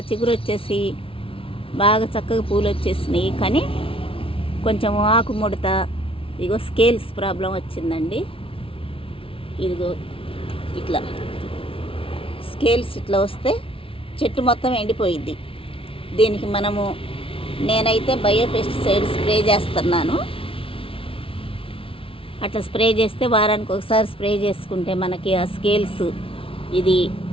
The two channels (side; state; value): right; late; 0.26 ms